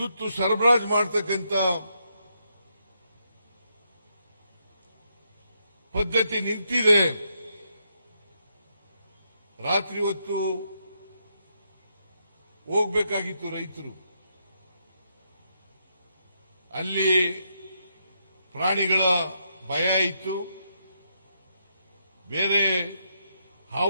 ಸರಬರಾಜು ಮಾಡತಕ್ಕಂಥ ಪದ್ಧತಿ ನಿಂತಿದೆ. ರಾತ್ರಿ ಹೊತ್ತು ಹೋಗಬೇಕಾಗಿತ್ತು ರೈತರು. ಅಲ್ಲಿ ಪ್ರಾಣಿಗಳ ಭಯ ಇತ್ತು, ಬೇರೆ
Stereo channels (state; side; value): inverted; both; correlation -0.79